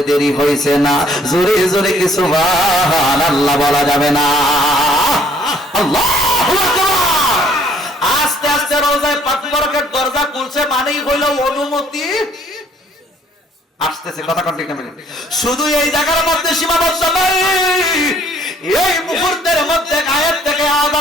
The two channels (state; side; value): normal; both; correlation 0.61